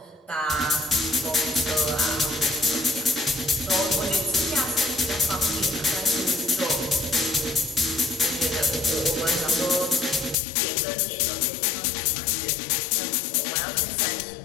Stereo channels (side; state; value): right; drops out; at 10.4 s